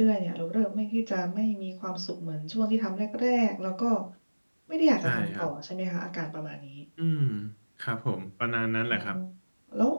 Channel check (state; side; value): inverted; both; correlation -1.00